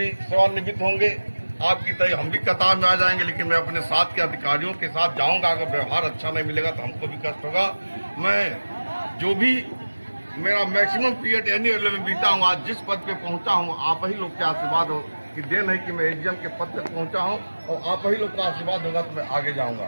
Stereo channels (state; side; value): inverted; both; correlation -1.00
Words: सेवानिवृत्त होंगे, आपकी तरह हम भी कतार में आ जाएंगे, लेकिन मैं अपने साथ के अधिकारियों के साथ जाऊंगा। अगर व्यवहार अच्छा नहीं मिलेगा तो हमको भी कष्ट होगा। मैं जो भी मेरा मैक्सिमम पीरियड एनी लेवल में बीता हूँ, आज जिस पद पे पहुंचा हूँ, आप ही लोग के आशीर्वाद हो कि देन है कि मैं एजीएम के पद तक पहुंचा हूँ, और आप ही लोग का आशीर्वाद होगा तो मैं आगे